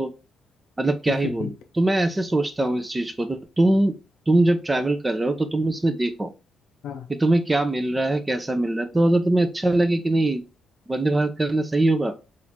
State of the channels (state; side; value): normal; both; correlation 0.94